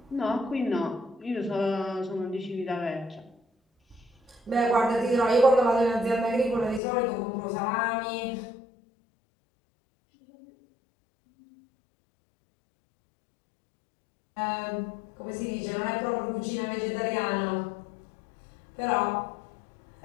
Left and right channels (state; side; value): drops out; right; at 6.8 s